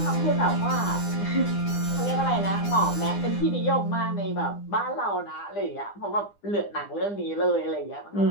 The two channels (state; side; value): late; right; 9.9 ms